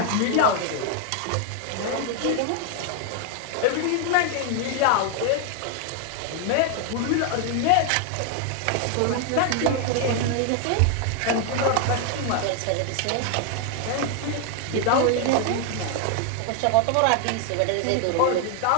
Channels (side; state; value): both; different; correlation 0.00